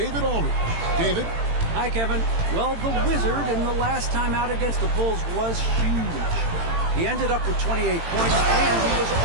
Aldridge. David? Hi, Kevin. Well, the Wizard in the last time out against the Bulls was huge. He ended up with 28 points, and he was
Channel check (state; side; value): late; left; 18 ms